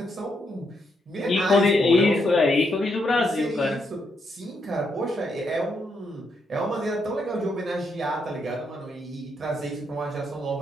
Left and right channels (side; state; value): both; normal; correlation 0.78